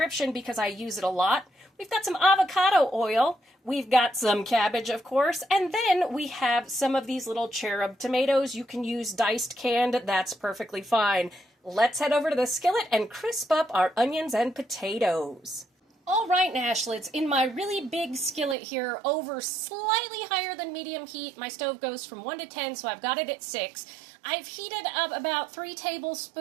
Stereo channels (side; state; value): left; drops out; at 18.6 s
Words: because I use it a lot. We've got some avocado oil. We've got some cabbage, of course. And then we have some of these little cherub tomatoes. You can use diced canned. That's perfectly fine. Let's head over to the skillet and crisp up our onions and potatoes. All right, Nashlets, in my really big skillet here, over slightly higher than medium heat, my stove goes from 1 to 10, so I've got it at 6. I've heated up about 3